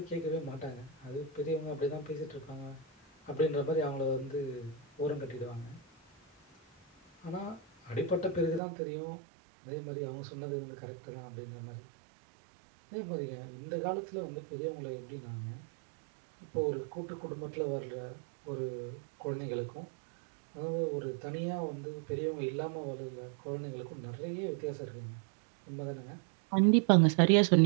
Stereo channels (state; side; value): drops out; left; at 8.6 s